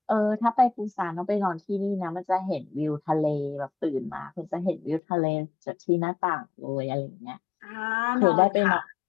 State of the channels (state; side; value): drops out; right; at 5.0 s